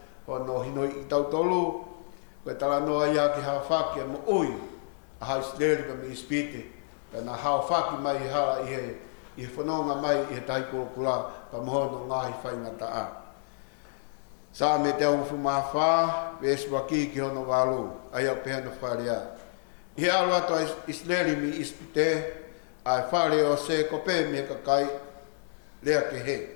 Hono hino i tau tolu, koe tala noa ia ki hao whaki a mo ui, a hao sleri ka mi ispite, ka na hao whaki mai i hala i he whanonga mai i he taiko kula, ka mohono ngahi whaingata a. Sa me te au whumawha, peswa ki ki hono walu, ai au pehana wharia. I he alo ato i sleri mi ispite, ai whare o se kope me ka kai, lea ke he.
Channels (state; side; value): silent; right; digital silence